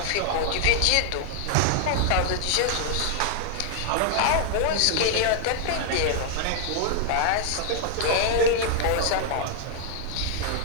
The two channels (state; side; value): different; both; correlation 0.00